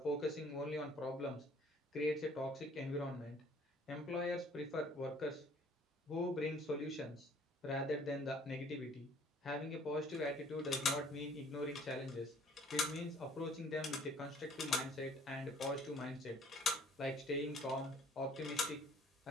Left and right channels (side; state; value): both; normal; correlation 0.57